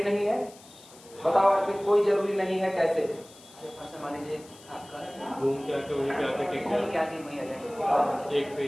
नहीं है, बताओ अर्पित, कोई जरूरी नहीं है, कैसे? मान लीजिए आपका घूम के आके वहीं पे आके टिक घूम के आके वहीं आ जाए, एक पे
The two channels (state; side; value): noise; left; hiss, 22 dB below the sound